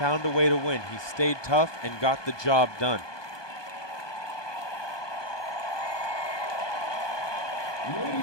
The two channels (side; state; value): right; late; 1.2 ms